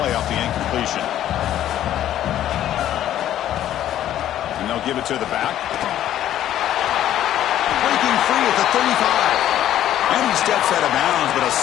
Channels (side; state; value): right; quieter; 11.9 dB